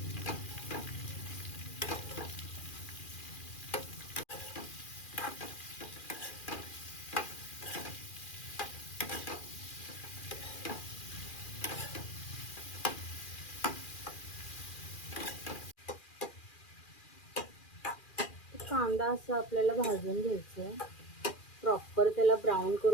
कांदा असं आपल्याला भाजून घ्यायचं आहे, प्रॉपर त्याला ब्राऊन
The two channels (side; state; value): right; late; 2.4 ms